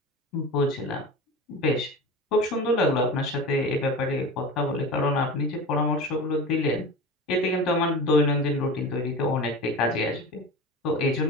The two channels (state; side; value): normal; both; correlation 0.31